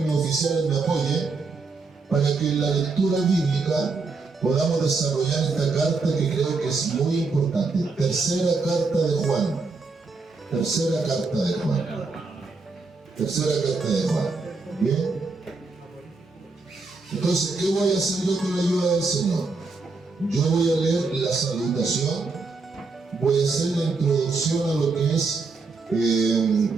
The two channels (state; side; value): quieter; left; 4.1 dB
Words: oficiales me apoyen para que en la lectura bíblica podamos desarrollar esta carta que creo que es muy importante. Tercera carta de Juan. Tercera carta de Juan. Tercera carta de Juan. ¿Bien? Entonces, ¿qué voy a hacer yo con la ayuda del Señor? Yo voy a leer la salutación, voy a hacer la introducción a lo que es